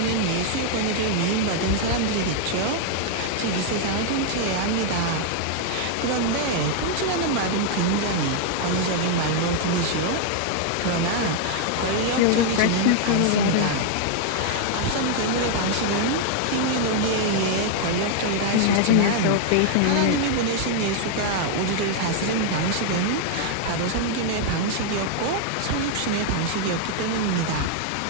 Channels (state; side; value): different; both; correlation 0.00